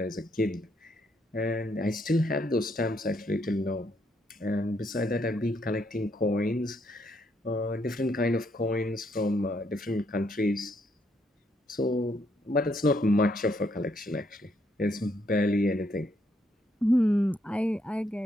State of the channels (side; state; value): both; normal; correlation 0.73